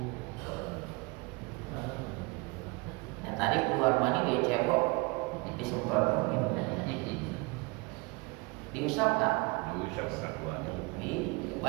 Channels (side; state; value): left; quieter; 27.5 dB